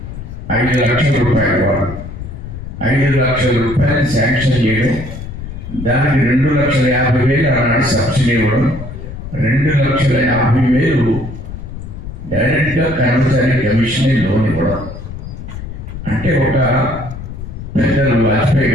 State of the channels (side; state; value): left; noise; rumble, 10 dB below the sound